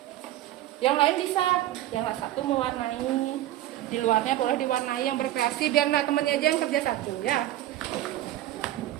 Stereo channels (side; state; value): left; quieter; 14.2 dB